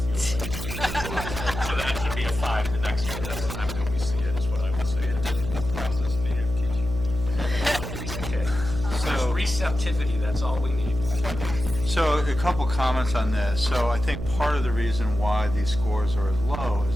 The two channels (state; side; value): noise; right; hum, 8 dB below the sound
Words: feels like. So that should be a 5 the next time that we see it, is what I would say. Process native teaching. Okay. So receptivity, that's all we need. So a couple comments on this. So I think part of the reason why these scores are as low